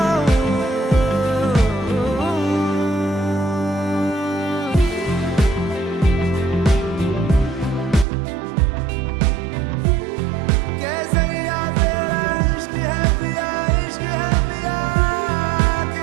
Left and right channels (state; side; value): drops out; left; at 8.1 s